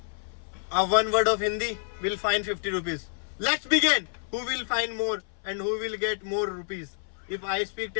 One word of Hindi will fine 50 rupees. Let's begin. Who will find more and who will get more rupees? If I speak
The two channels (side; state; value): right; silent; 59 dB below the other